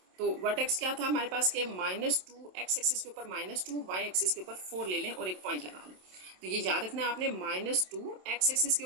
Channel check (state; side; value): late; left; 27 ms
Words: तो वर्टेक्स क्या था हमारे पास के -2 x एक्सिस के ऊपर -2, y एक्सिस के ऊपर 4 ले लें और एक पॉइंट लगा लें। तो ये याद रखना है आपने, -2 x एक्सिस के